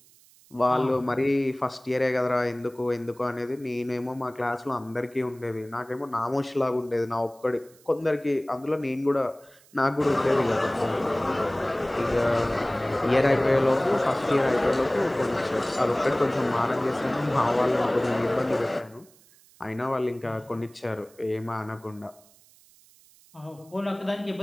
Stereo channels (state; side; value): noise; right; hiss, 28 dB below the sound